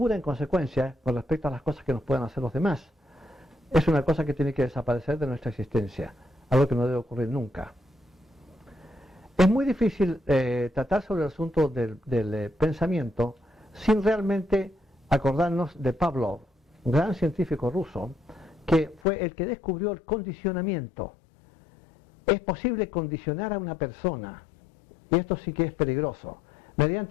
en consecuencia, con respecto a las cosas que nos puedan hacer los demás, es una cosa que tiene que desaparecer de nuestra existencia, algo que no debe ocurrir nunca. Es muy difícil tratar sobre el asunto del pensamiento sin realmente acordarnos de Pavlov, un gran científico ruso, que fue el que descubrió el condicionamiento. Es posible condicionar a una persona, y esto sí que es peligroso,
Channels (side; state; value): right; drops out; at 19.0 s